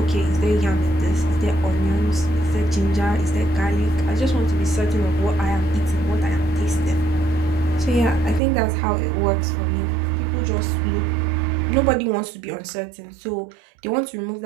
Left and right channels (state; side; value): drops out; left; at 8.4 s